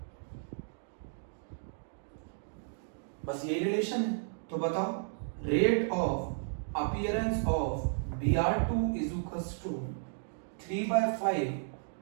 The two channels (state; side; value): silent; left; digital silence